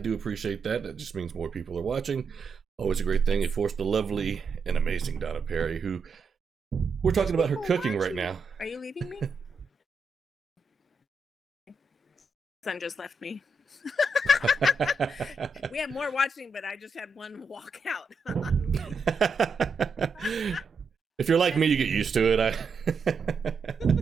appreciate that. That just means more people are watching. Always a great thing. Of course, the lovely and amazing Donna Perry, who We're talking about her People cooking right watching. now. Are you leaving me? Son just left me. We have more watching, but I just had one walk out. If you're like me, you get used to it. Right?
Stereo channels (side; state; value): left; quieter; 3.7 dB